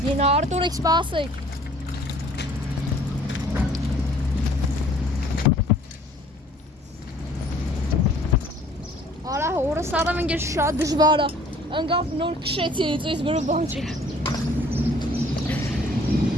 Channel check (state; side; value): normal; both; correlation 0.54